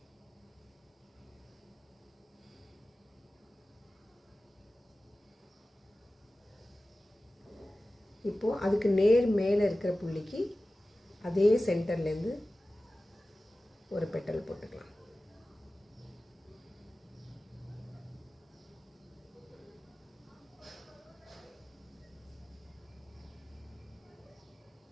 இப்போது அதுக்கு நேர் மேலே இருக்கிற புள்ளிக்கு அதே சென்டர்லேருந்து ஒரு பெட்டல் போட்டுக்கலாம்.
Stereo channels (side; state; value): both; normal; correlation 0.96